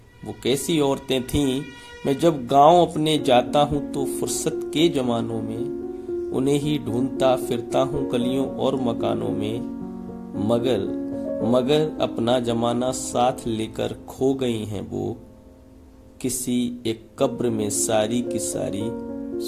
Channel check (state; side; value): identical; both; correlation 1.00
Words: वो कैसी औरतें थीं मैं जब गांव अपने जाता हूँ तो फुर्सत के जमानों में उन्हें ही ढूंढता फिरता हूँ गलियों और मकानों में, मगर अपना जमाना साथ लेकर खो गई हैं वो, किसी एक कब्र में सारी की सारी